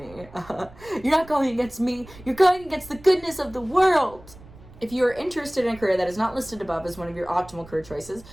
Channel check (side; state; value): right; noise; rumble, 20 dB below the sound